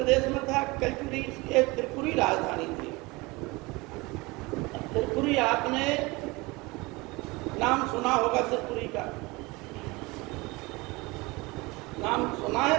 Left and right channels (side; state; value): left; quieter; 23.8 dB